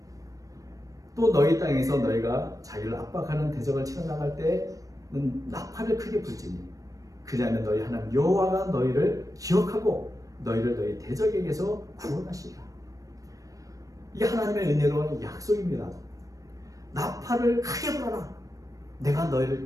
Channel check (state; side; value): late; left; 0.16 ms